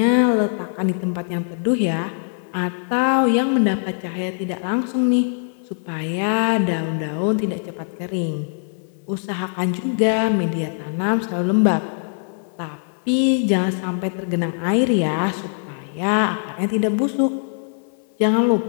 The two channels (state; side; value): silent; right; digital silence